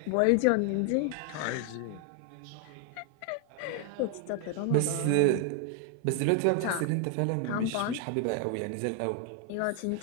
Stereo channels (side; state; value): both; different; correlation 0.00